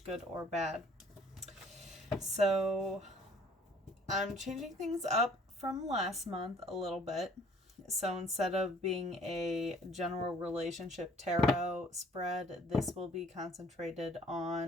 or bad. So I'm changing things up from last month a little bit. So instead of being a general relationship tarot spread, this will be concentrated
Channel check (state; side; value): normal; both; correlation 0.57